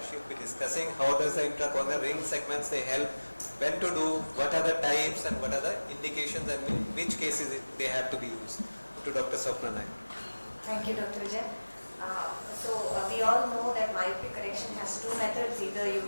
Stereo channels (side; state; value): both; inverted; correlation -1.00